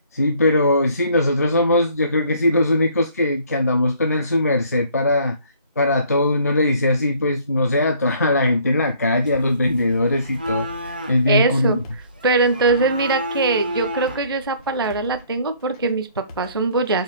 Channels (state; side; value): inverted; both; correlation -0.59